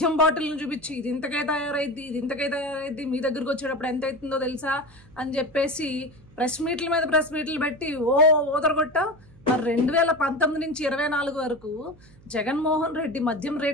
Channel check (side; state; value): right; noise; hum, 25 dB below the sound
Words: బాటిల్ని చూపించి ఇది ఇంతకే తయారైద్ది మీ దగ్గరకు వచ్చేటప్పుడు ఎంత అవుతుందో తెలుసా అని చెప్పేసి ప్రెస్ మీట్లు పెట్టి ఓదరగొట్టా. మరి 2019 నుంచి 24 వరకు జగన్మోహన్ రెడ్డి మద్యం